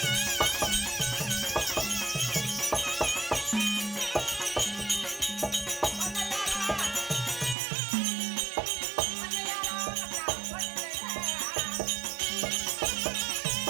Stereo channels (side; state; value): left; drops out; at 7.6 s